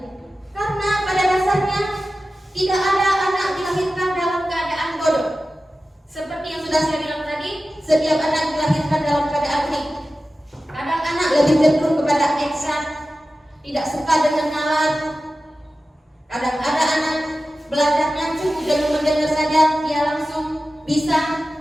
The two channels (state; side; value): normal; both; correlation 0.94